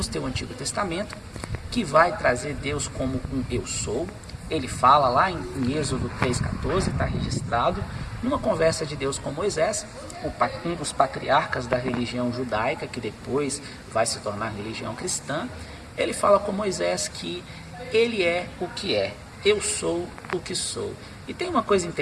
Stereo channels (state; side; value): identical; both; correlation 1.00